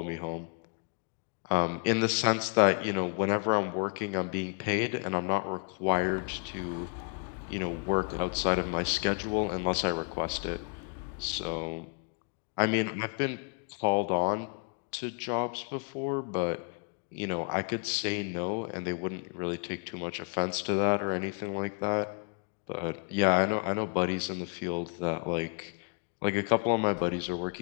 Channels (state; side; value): quieter; right; 36.9 dB